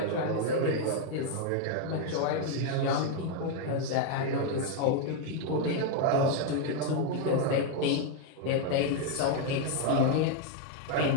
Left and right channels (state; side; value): different; both; correlation 0.01